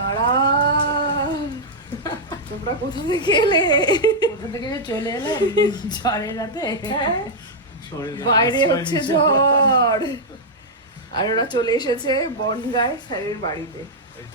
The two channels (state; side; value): normal; both; correlation -0.05